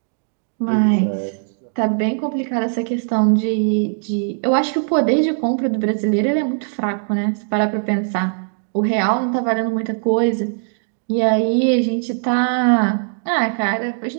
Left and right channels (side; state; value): left; silent; digital silence